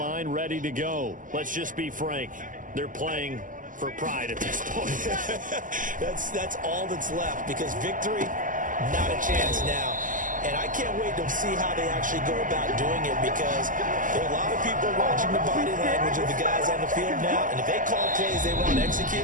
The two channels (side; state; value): left; late; 0.38 ms